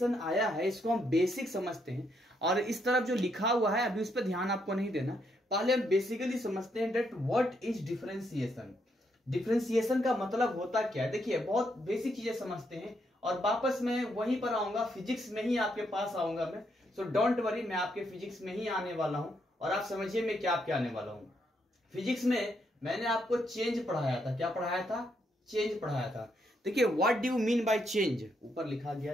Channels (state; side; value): normal; both; correlation 0.76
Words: आया है इसको हम बेसिक समझते हैं, और इस तरफ जो लिखा हुआ है अभी उस पर ध्यान आपको नहीं देना। पहले हम बेसिकली समझते हैं that what is differentiation. Differentiation का मतलब होता क्या है। देखिए, बहुत बेसिक चीजें समझते हैं और वापस मैं वहीं पर आऊंगा, फिजिक्स में ही आपके पास आऊंगा मैं। सो डोंट वरी, मैं आपके फिजिक्स में ही आने वाला हूं और आप समझिए मैं क्या क्या आने वाला हूं। फिजिक्स में मैंने आपको चेंज पढ़ाया था। क्या पढ़ाया था? चेंज पढ़ाया था। देखिए, what do you mean by change, ऊपर लिखा